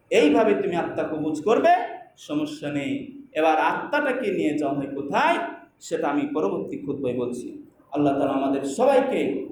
এইভাবে তুমি আত্মা কবুজ করবে, সমস্যা নেই। এবার আত্মাটাকে নিয়ে যাওয়া হয় কোথায়, সেটা আমি পরবর্তী খুতবায় বলছি। আল্লাহ তাআলা আমাদের সবাইকে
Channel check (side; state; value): both; identical; correlation 1.00